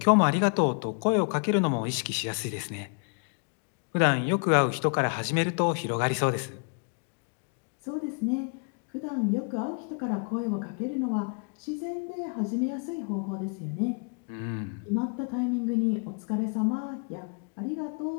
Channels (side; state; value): right; quieter; 39.2 dB